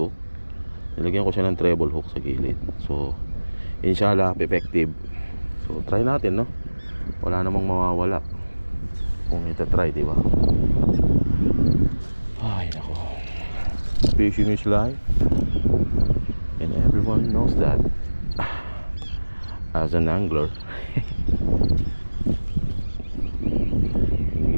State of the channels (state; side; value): inverted; both; correlation -1.00